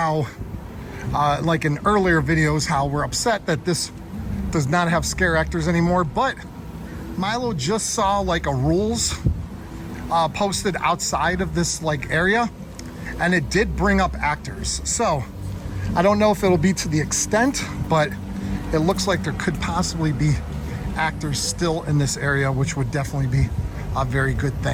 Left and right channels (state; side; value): identical; both; correlation 1.00